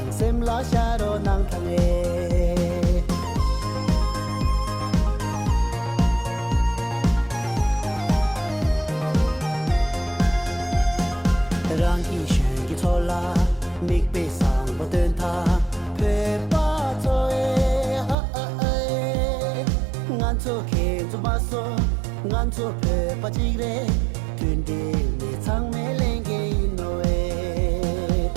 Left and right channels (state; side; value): drops out; left; at 18.2 s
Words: sem la sharo nang thange Rangi shugi thola mik pe sang ba den tha pe pa toe ngan cho ke to ba so ngan cho pe pa chi re tun de ni chang me leng ge no e